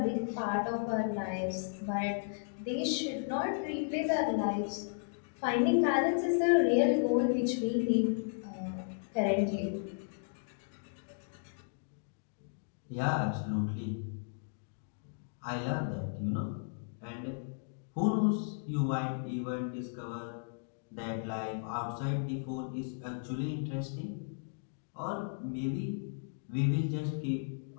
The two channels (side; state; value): right; silent; digital silence